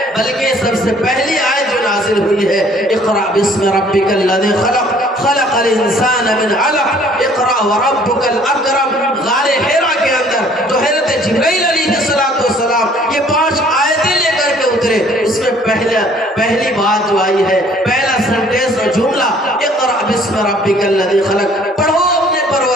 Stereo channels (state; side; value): normal; both; correlation 0.57